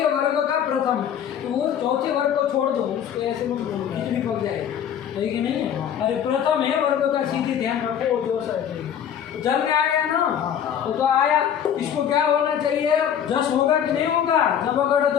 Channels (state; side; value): quieter; right; 9.0 dB